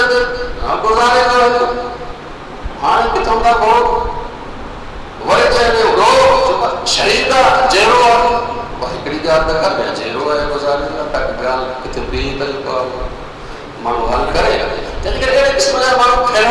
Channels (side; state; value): both; identical; correlation 1.00